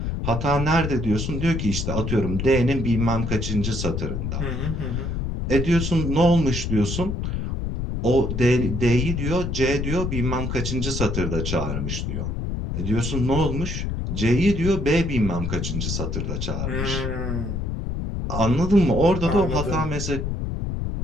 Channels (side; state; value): left; noise; rumble, 2 dB below the sound